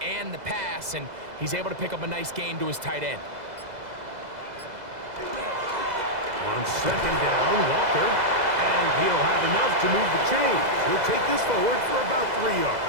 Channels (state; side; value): late; left; 2.0 ms